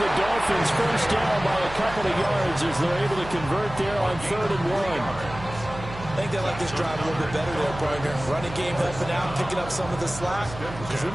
Dolphins first down by a couple of yards as they're able to convert there on 3rd and 1. I think they like this drive a little bit better there, partner. Running game helping out, picking up some of the slack. Because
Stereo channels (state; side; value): noise; right; hum, 12 dB below the sound